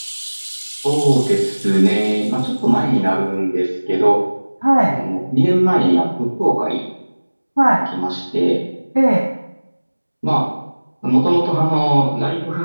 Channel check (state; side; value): inverted; both; correlation -1.00